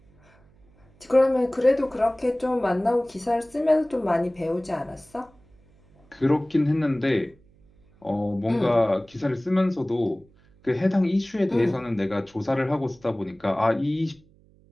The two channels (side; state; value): right; noise; hum, 30 dB below the sound